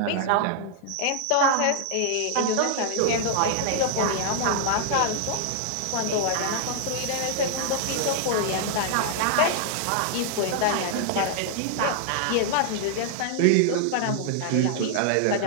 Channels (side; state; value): both; different; correlation 0.00